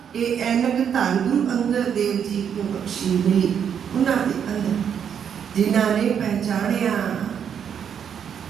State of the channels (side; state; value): left; quieter; 8.1 dB